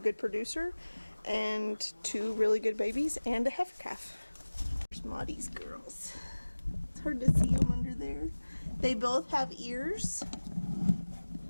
producer and 2 really good babies and a heifer calf. There's Maudie's girls. It's hard to see them under there. They both have ears.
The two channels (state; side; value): inverted; both; correlation -1.00